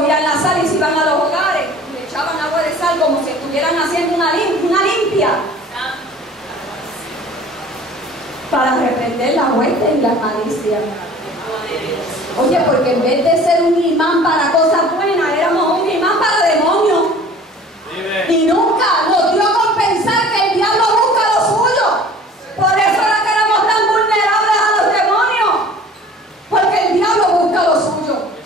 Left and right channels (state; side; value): normal; both; correlation 0.46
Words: la sal y se iban a los hogares y le echaban agua de sal como si estuvieran haciendo una limpia para reprender la muerte y la malicia. Oye, porque en vez de ser un imán para cosas buenas, éramos un imán para demonios. Y nunca nos dio a compensar que el diablo busca lo suyo. Por eso era que éramos tan vulnerables a los demonios, porque el diablo busca lo suyo.